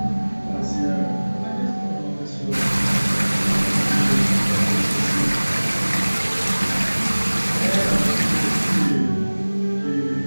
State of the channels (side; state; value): both; inverted; correlation -1.00